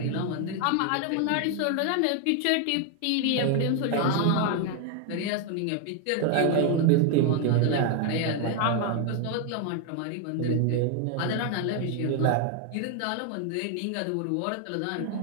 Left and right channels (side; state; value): both; different; correlation 0.01